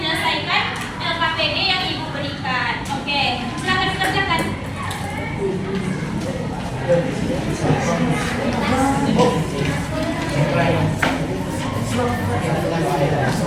LKPD yang Ibu berikan. Oke, silakan dikerjakan.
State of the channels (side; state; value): both; identical; correlation 1.00